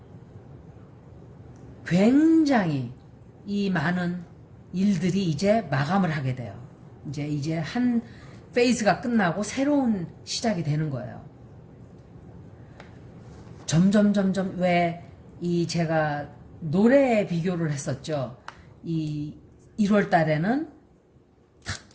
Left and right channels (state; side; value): identical; both; correlation 1.00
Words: 굉장히 이 많은 일들이 이제 마감을 하게 돼요. 이제 한 페이즈가 끝나고 새로운 시작이 되는 거예요. 점점 왜 이 제가 노래 비교를 했었죠. 이 1월 달에는